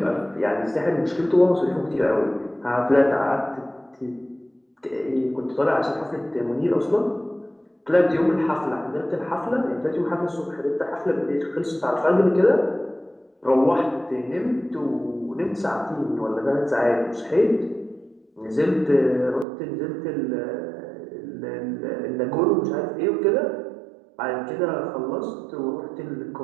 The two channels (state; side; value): drops out; left; at 19.5 s